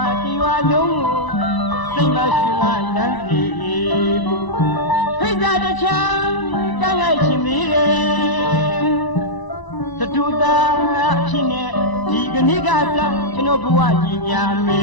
ါဒီဝါလုံးကိုစိတ်မရွှင်ကလမ်းစီဖိတ်တာတချမ်းကန့်လိုက်ချင်သေးတယ်တတူတာဖြစ်နေဒီကနေ့ကစားကျွန်တော်ဘဝကြီးညာမ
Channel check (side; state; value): right; late; 1.0 ms